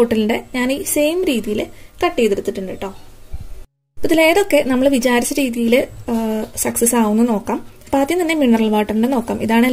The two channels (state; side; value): identical; both; correlation 1.00